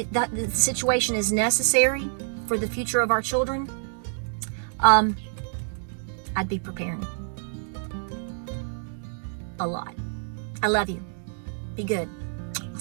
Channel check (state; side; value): silent; left; digital silence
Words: situation is necessary for the future of our children, I'd be preparing a lot. I love you. Be good.